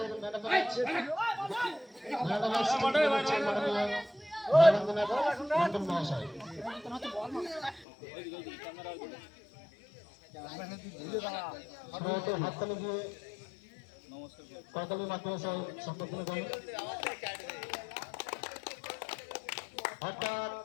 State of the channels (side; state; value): right; drops out; at 7.9 s